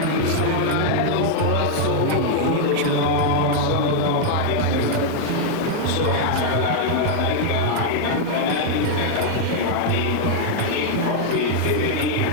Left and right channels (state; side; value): different; both; correlation 0.00